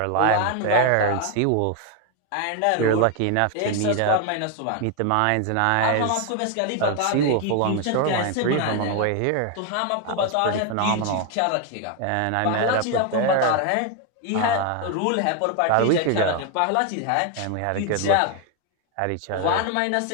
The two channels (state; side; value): different; both; correlation 0.01